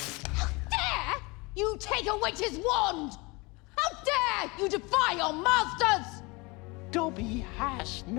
dare you take a witch's wand! How dare you defy your masters! Dobby has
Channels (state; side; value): quieter; right; 25.9 dB